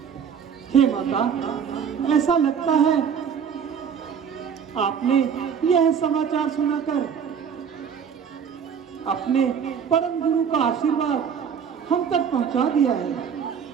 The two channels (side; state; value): left; quieter; 7.3 dB